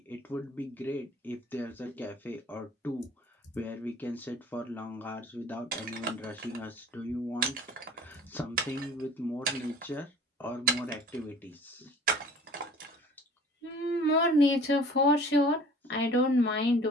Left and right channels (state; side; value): normal; both; correlation 0.47